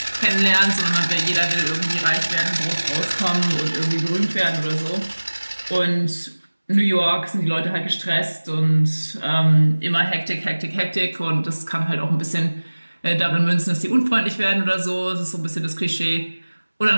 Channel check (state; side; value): inverted; both; correlation -1.00